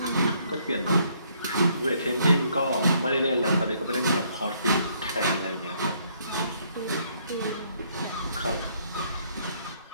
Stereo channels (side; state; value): both; inverted; correlation -0.68